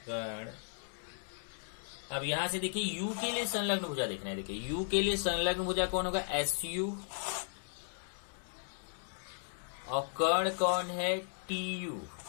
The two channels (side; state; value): right; silent; digital silence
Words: कर्ण। अब यहां से देखिए यू के लिए संलग्न भुजा देखना है, देखिए यू के लिए संलग्न भुजा कौन होगा, एसयू, और कर्ण कौन है, टीयू,